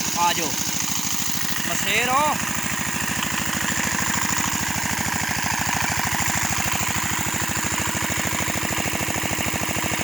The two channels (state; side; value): noise; right; hiss, 9 dB below the sound